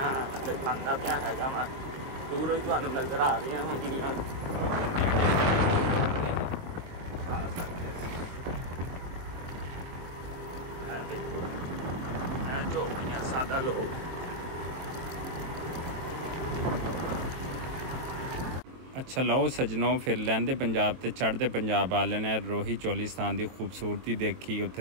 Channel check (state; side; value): late; left; 23 ms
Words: दिखाना पिया हैगा वा, दूरों ही तुहानू नज़र आ रही होंगियां। झोपड़ियां, सादा लोग। अच्छा लो सजनों, फिर लैंदे पंजाब ते चढ़ते पंजाब वाले ने रोही चोलिस्तान की खूबसूरती देखी,